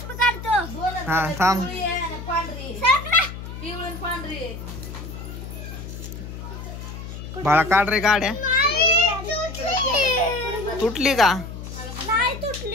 हा थांब. बाळा काढ रे गाड्या. तुटली का?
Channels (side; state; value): left; noise; hum, 10 dB below the sound